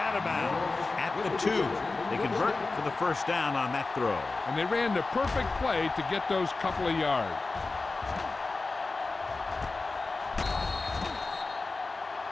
of bounds at the 2. They convert for the first down on that throw. And they ran the perfect play to get those couple of yards.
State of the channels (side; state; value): right; quieter; 3.6 dB